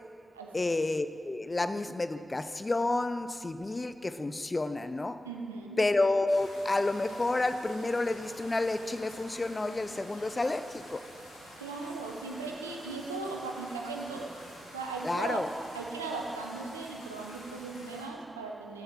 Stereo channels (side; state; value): both; normal; correlation 0.90